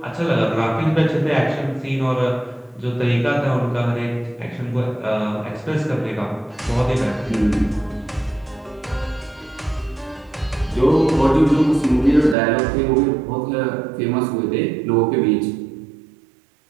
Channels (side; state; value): left; drops out; at 12.4 s